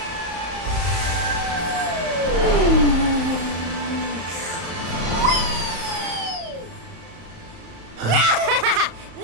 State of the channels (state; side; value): late; left; 35 ms